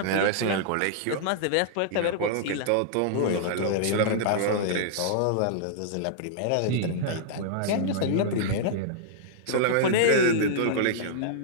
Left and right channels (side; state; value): both; different; correlation -0.02